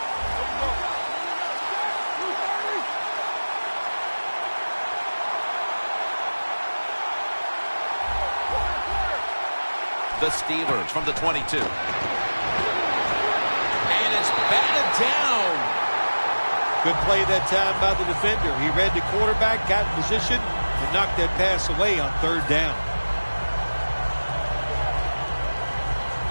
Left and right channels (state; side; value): inverted; both; correlation -1.00